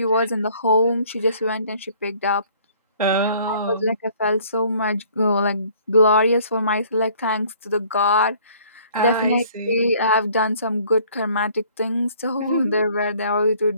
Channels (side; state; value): both; inverted; correlation -0.57